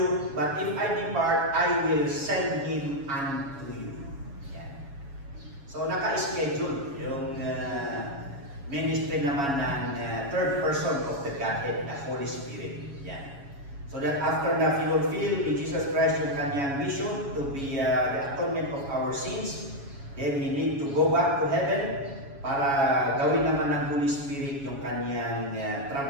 But if I depart, I will send Him unto you. Yan. So naka-schedule yung ministry naman ng third person of the Godhead, the Holy Spirit. Yan. So that after na fulfill ni Jesus Christ yung kanyang mission to be the atonement of our sins, then He need to go back to heaven para gawin naman ng Holy Spirit yung kanyang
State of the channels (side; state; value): left; late; 7.2 ms